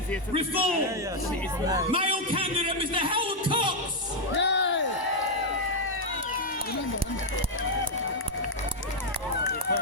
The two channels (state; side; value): late; right; 1.0 ms